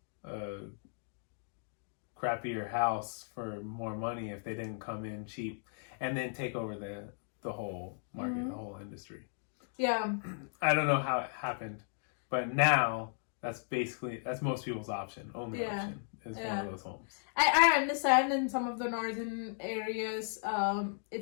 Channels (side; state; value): right; silent; digital silence